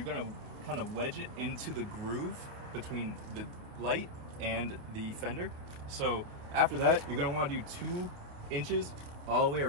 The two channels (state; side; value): late; left; 28 ms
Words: going to kind of wedge it into the groove between the light and the fender. So after that, you're going to want to do 2 inches all the way